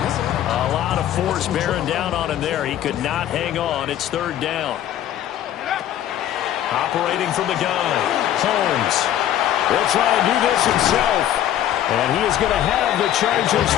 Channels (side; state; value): right; quieter; 11.7 dB